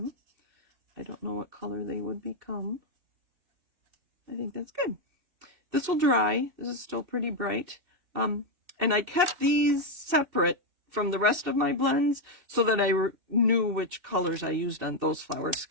I don't know what color they would become. I think that's good. This will dry. This is still pretty bright. And I kept these separate from the rest of my blends so that I knew which colors I used on those flowers,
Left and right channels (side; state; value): left; late; 2.7 ms